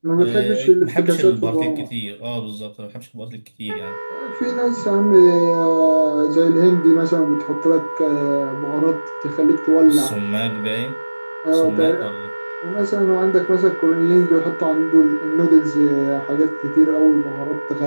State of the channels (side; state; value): both; inverted; correlation -1.00